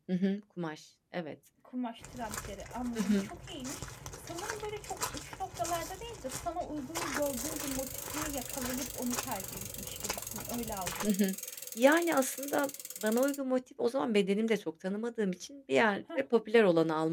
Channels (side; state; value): both; identical; correlation 1.00